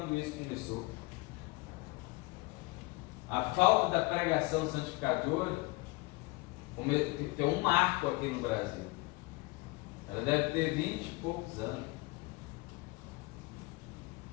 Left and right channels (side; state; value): right; quieter; 24.0 dB